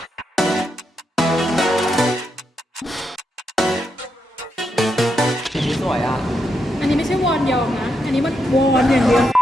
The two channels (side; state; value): both; normal; correlation 0.82